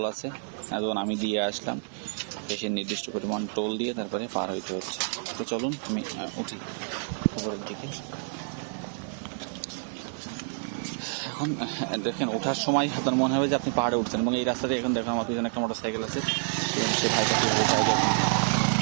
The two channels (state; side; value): silent; left; 59 dB below the other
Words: আছে। এখন আমি দিয়ে আসলাম, বেশি নির্দিষ্ট পরিমাণ টোল দিয়ে তারপরে পার হইতে হচ্ছে। তো চলুন আমি উঠি উপরের দিকে। এখন দেখেন ওঠার সময় আপনার মনে হবে যে আপনি পাহাড়ে উঠছেন, এবং এই রাস্তাতে এখন দেখুন আমার পিছনে একটা মোটরসাইকেল আছে, সে ভাইটা কীভাবে যায় দেখুন।